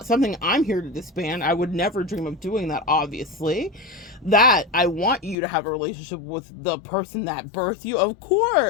something I'm here to disband. I would never dream of doing that, obviously. That I want you to have a relationship with the person that birthed you, of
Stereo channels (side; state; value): right; drops out; at 5.4 s